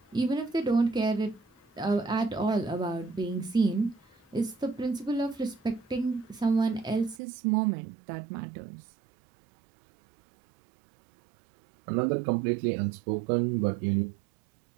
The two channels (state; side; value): drops out; left; at 7.2 s